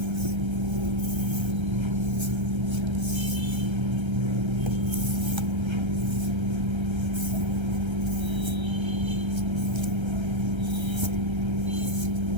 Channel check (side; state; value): left; late; 1.3 ms